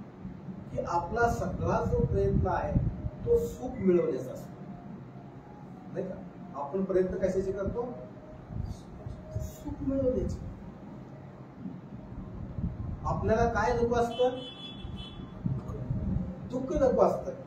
की आपला सगळा जो प्रयत्न आहे तो सुख मिळवण्याचा असतो, नाही का? आपण प्रयत्न कशाचे करतो? सुख मिळवण्याचे. आपल्याला काय नको असतं? दुःख नको असतं.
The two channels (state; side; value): identical; both; correlation 1.00